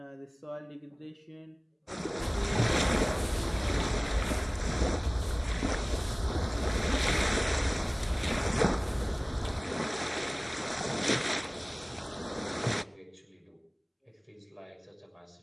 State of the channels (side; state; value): both; identical; correlation 1.00